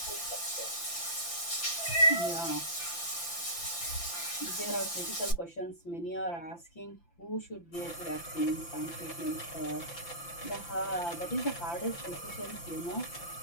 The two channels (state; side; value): late; right; 5.9 ms